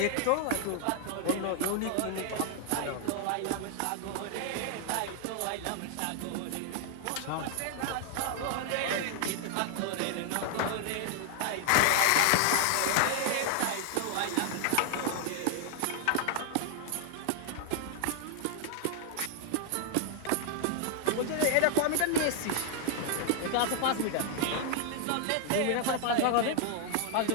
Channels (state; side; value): different; both; correlation 0.00